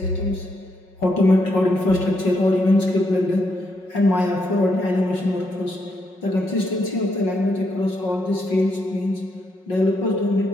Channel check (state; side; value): late; right; 5.5 ms